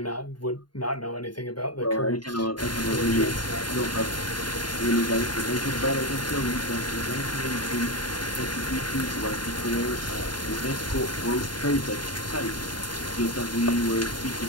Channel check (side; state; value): right; late; 0.71 ms